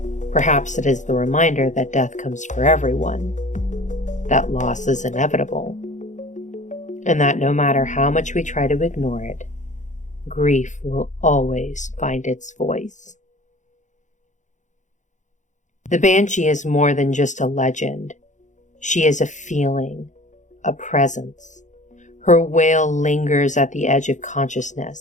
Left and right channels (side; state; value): right; late; 0.35 ms